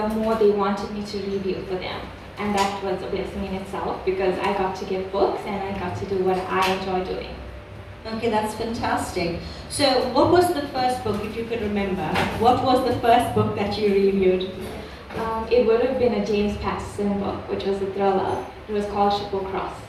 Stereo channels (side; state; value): both; identical; correlation 1.00